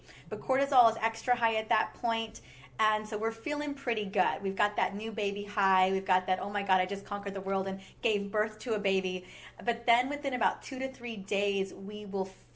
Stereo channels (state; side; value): identical; both; correlation 1.00